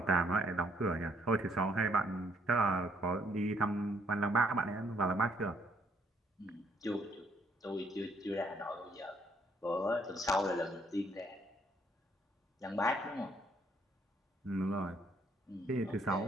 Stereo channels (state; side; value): normal; both; correlation 0.68